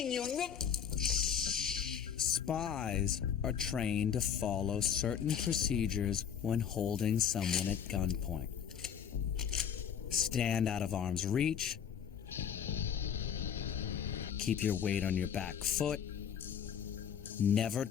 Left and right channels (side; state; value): right; quieter; 8.2 dB